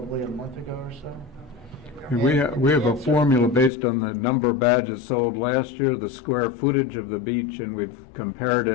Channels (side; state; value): right; drops out; at 3.7 s